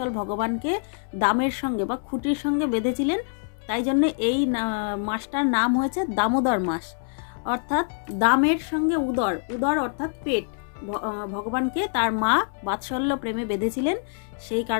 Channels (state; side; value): silent; right; 62 dB below the other